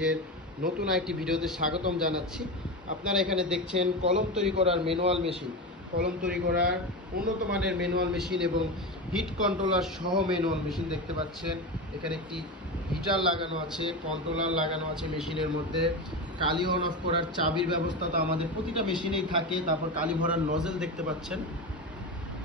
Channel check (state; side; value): normal; both; correlation 0.20